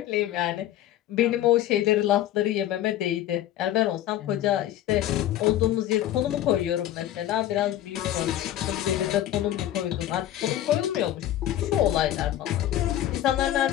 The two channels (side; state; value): right; quieter; 12.6 dB